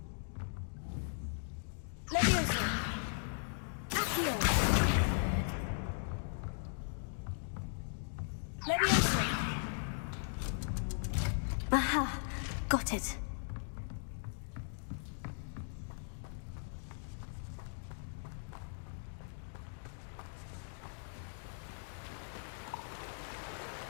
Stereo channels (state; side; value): silent; right; digital silence